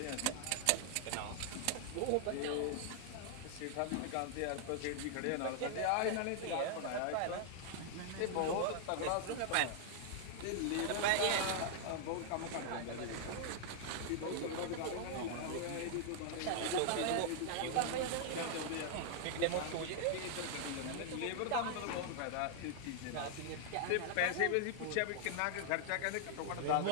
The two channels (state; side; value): different; both; correlation 0.00